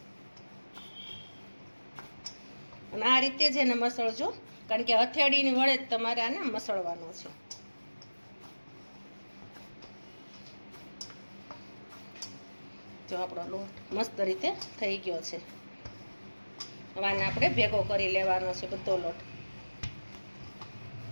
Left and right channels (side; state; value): both; inverted; correlation -1.00